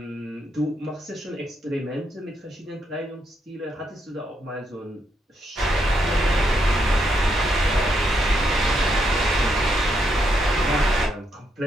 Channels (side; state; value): both; normal; correlation 0.78